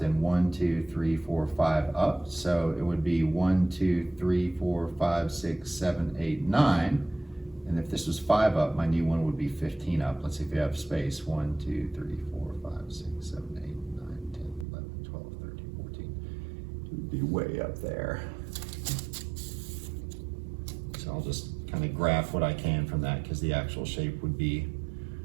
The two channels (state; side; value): drops out; left; at 14.7 s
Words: and 1, 2, 3, 4, 5 up. So it would be 1, 2, 3, 4, 5, 6, 7, 8, 9. And if this was 5 up, my new one would be 15 up. Let's see if we have space. 1, 2, 3, 4, 5, 6, 7, 8, 9, 10, 11, 12, 13, 14. It would be way up there. So I'll just kind of graph what I can from that, because the actual shape would be